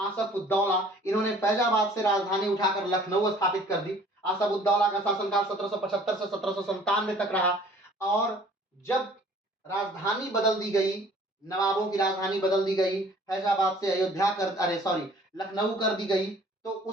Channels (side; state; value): both; normal; correlation 0.53